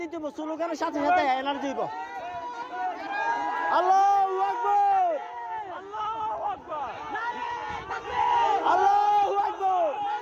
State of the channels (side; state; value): both; identical; correlation 1.00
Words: দিতে হবে, স্লোগানের সাথে সাথে এনার্জি হইব। আল্লাহু আকবার, আল্লাহু আকবার, আল্লাহু আকবার,